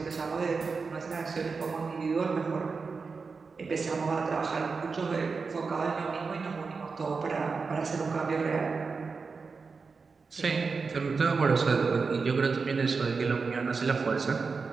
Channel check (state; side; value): quieter; left; 4.7 dB